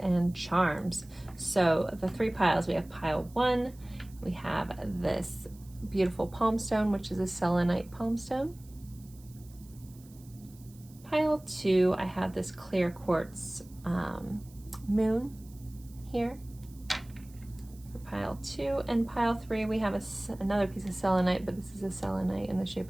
charms. So the 3 piles, we have pile 1. We have this beautiful palm stone, which is a selenite palm stone. Pile 2, I have this clear quartz moon here for pile 2. And pile 3, we have another piece of selenite, but this is a selenite in the shape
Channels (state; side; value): noise; right; hiss, 25 dB below the sound